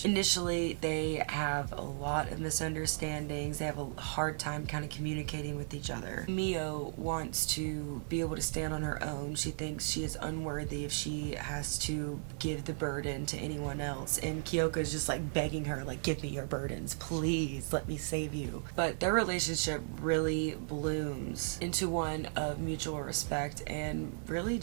Initially, they have a lot of misunderstandings. They have a hard time kind of communicating with each other. Mio wants to be able to stand on her own. She thinks she is unworthy if she has to give the burden to anyone else. And Kyoka is just like begging her, like, give me your burdens, please, let me save you. But their relationship really blooms into one of mutual respect and really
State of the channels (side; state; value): left; silent; 54 dB below the other